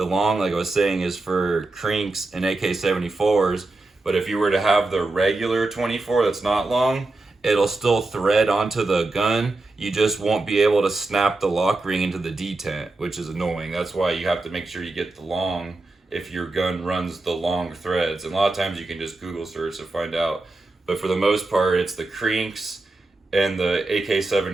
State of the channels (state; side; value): quieter; left; 3.1 dB